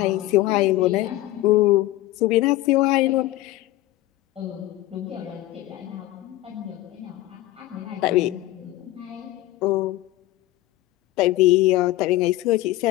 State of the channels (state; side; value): quieter; right; 16.6 dB